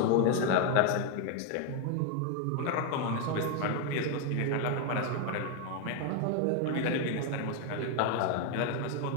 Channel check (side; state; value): both; different; correlation 0.01